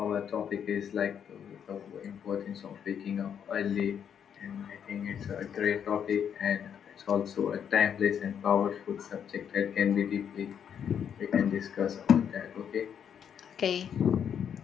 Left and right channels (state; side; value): quieter; right; 8.2 dB